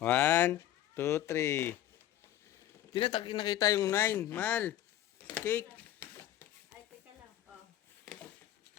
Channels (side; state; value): right; quieter; 12.6 dB